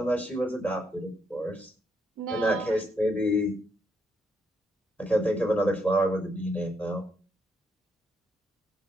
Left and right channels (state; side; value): normal; both; correlation 0.77